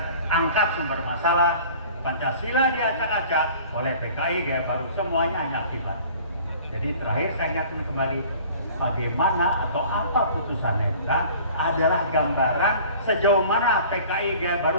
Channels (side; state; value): both; inverted; correlation -0.47